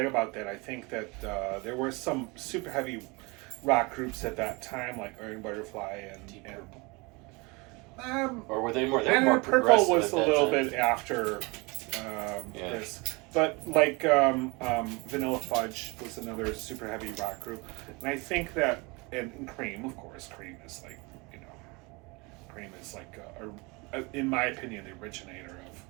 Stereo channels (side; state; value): left; quieter; 27.1 dB